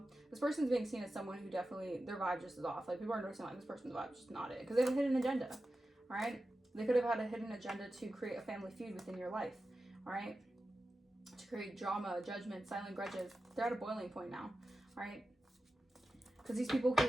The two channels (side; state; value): both; normal; correlation 0.93